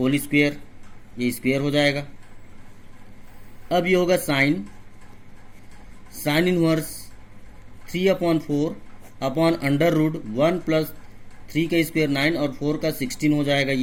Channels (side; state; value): both; identical; correlation 1.00